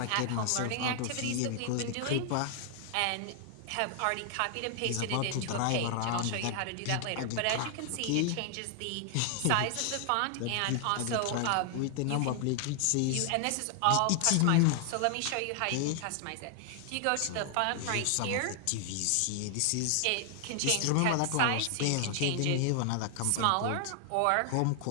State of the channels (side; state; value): both; different; correlation 0.00